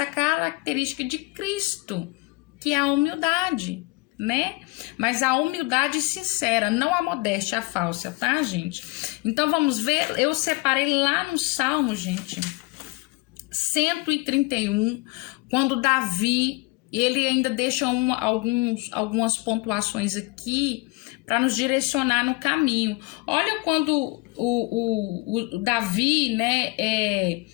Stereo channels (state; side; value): quieter; right; 23.9 dB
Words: característica de Cristo, que é a humildade, né? Mas a humildade sincera, não a modéstia falsa, tá, gente? Então vamos ver, eu separei lá no Salmo, gente, 131, quando Davi, ele ainda deixa algumas pontuações aqui para nos direcionar no caminho. Olha quando o Davi, né,